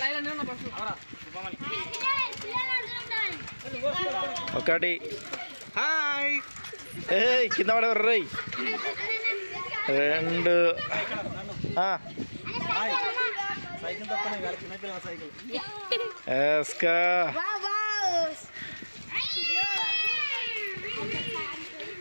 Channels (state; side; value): inverted; both; correlation -1.00